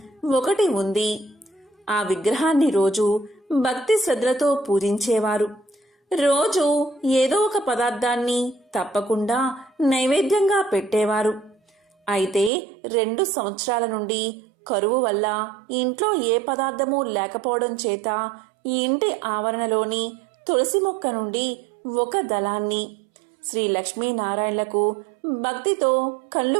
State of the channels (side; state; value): left; drops out; at 12.5 s